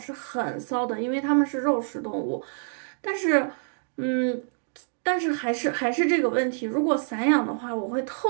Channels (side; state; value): left; silent; digital silence